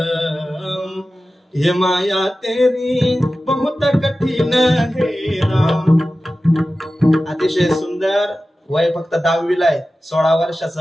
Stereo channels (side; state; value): both; normal; correlation 0.95